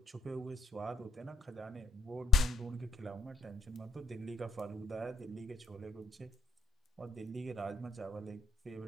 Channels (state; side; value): quieter; right; 3.2 dB